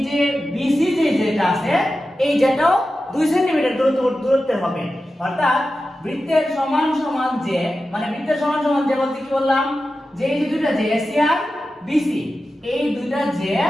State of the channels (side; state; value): both; normal; correlation 0.92